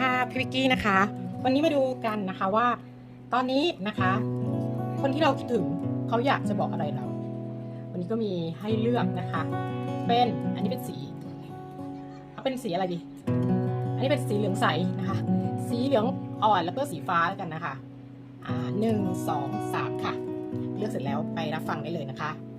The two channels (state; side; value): identical; both; correlation 1.00